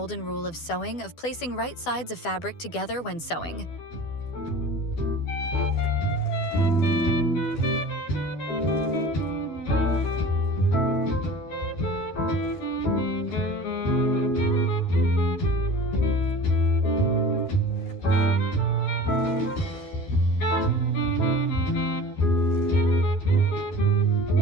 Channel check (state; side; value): late; right; 12 ms